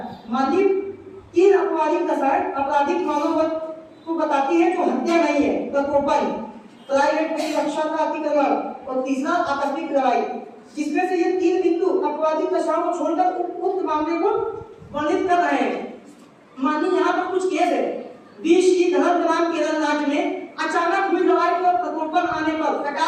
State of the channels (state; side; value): identical; both; correlation 1.00